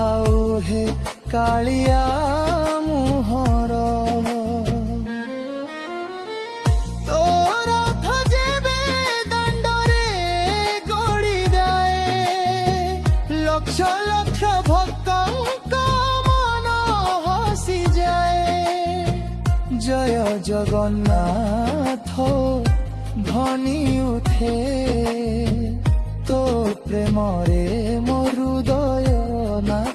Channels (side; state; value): both; identical; correlation 1.00